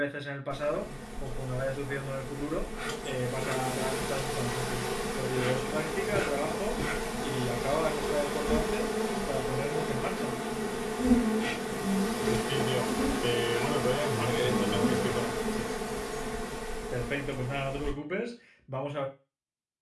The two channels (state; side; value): identical; both; correlation 1.00